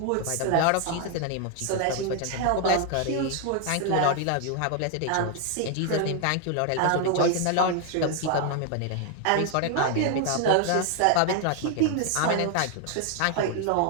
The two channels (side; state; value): both; different; correlation 0.00